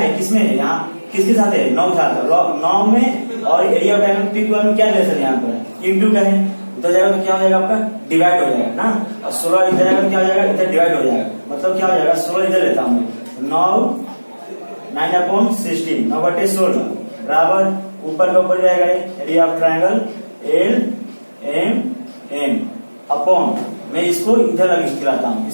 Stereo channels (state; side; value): inverted; both; correlation -1.00